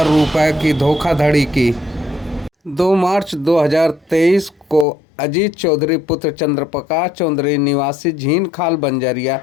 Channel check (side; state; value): right; drops out; at 4.9 s